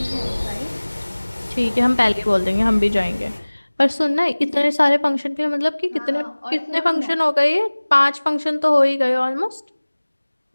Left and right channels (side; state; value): both; inverted; correlation -1.00